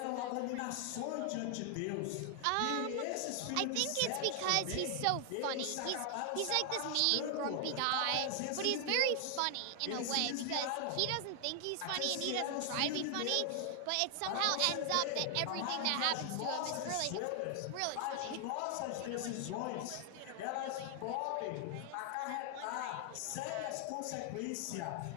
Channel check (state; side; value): different; both; correlation 0.00